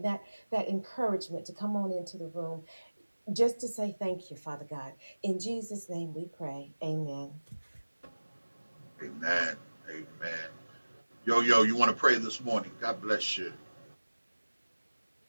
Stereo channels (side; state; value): both; inverted; correlation -1.00